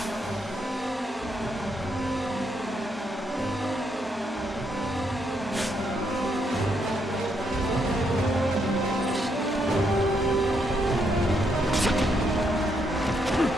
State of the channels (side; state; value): both; normal; correlation 0.76